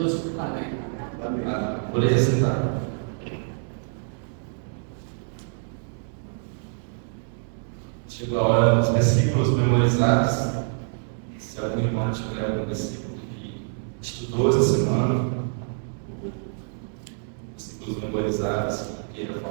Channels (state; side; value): silent; left; digital silence